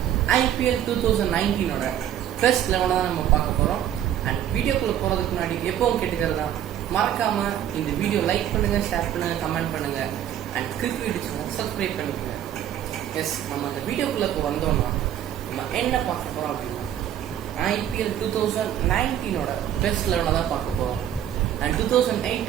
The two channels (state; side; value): quieter; left; 10.9 dB